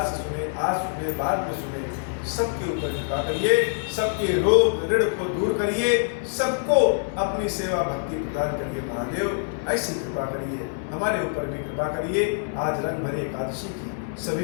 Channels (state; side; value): silent; right; 62 dB below the other